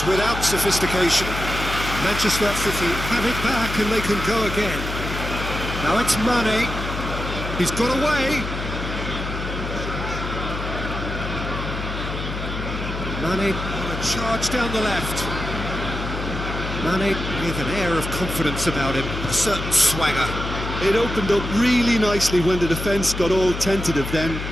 without sophistication. Manchester City have it back and they can go again. Now it's Mane. He's got away. Mane on a charge down the left. Mane with an air of confidence about him, a certain swagger. It opened up really nicely when the defence got all tentative then.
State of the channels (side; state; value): left; noise; hum, 6 dB below the sound